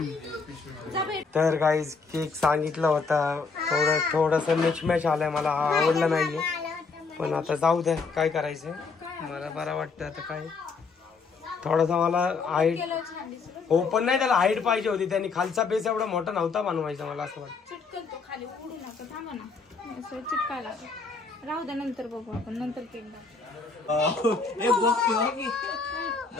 तर गाईज केक सांगितला होता, थोडस मिचमॅच आलाय, मला आवडला नाहीये. पण आता जाऊ द्या, काय करायचंय. मला बरं वाटतं आता. काय थोडासा मला हाईट ओपन नाही, त्याला हाईट पाहिजे होती. त्यांनी खालचा बेस एवढा मोठा नव्हता बनवायचा. मला असं वाटतं चिटकतो खाली उडू नका. थांबा ना असं चिटकायला राहू द्या. नंतर बघू आपण. नंतर केक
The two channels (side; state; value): right; quieter; 4.7 dB